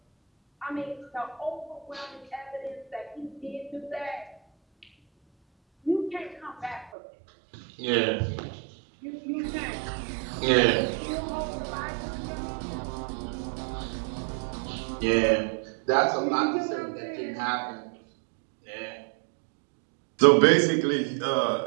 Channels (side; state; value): left; drops out; at 6.9 s